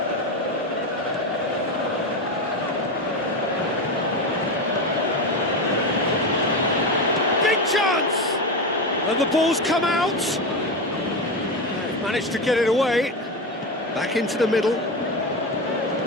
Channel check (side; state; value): both; normal; correlation 0.17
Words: Big chance! And the ball's come out. They've managed to get it away. Back into the middle.